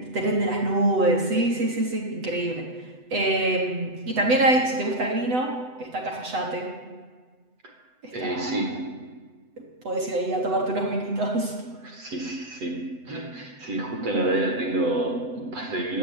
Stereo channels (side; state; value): left; late; 7.9 ms